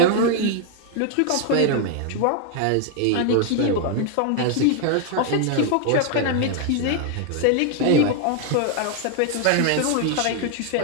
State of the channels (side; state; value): both; different; correlation 0.00